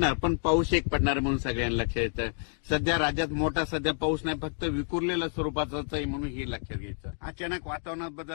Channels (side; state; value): right; silent; 58 dB below the other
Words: पण पाऊस एक पडणार म्हणून सगळ्यांना लक्षात येतं. सध्या राज्यात मोठा सध्या पाऊस नाही, फक्त विखुरलेल्या स्वरूपाचाच आहे, म्हणून हे लक्षात घ्यायचं. अचानक वातावरणात बदल